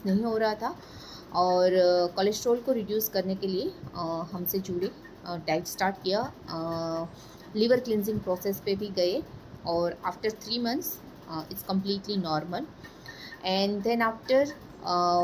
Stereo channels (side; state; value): both; identical; correlation 1.00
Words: नहीं हो रहा था और कोलेस्ट्रॉल को रिड्यूस करने के लिए हमसे जुड़े, डाइट स्टार्ट किया, लीवर क्लिनजिंग प्रोसेस पे भी गए और after 3 months it's completely normal. And then after